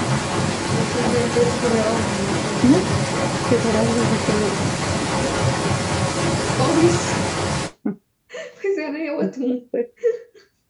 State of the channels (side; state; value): both; identical; correlation 1.00